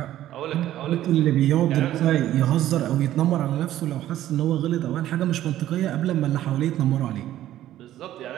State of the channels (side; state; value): left; quieter; 13.1 dB